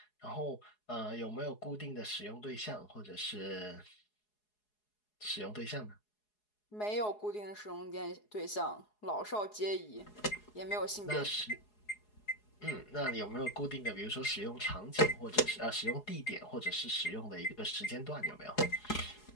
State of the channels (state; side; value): late; right; 4.8 ms